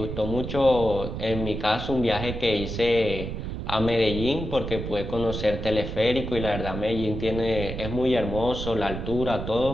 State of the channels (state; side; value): noise; right; rumble, 6 dB below the sound